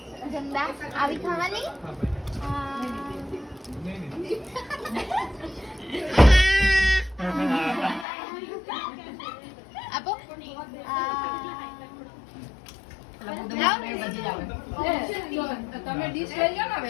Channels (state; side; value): drops out; right; at 8.1 s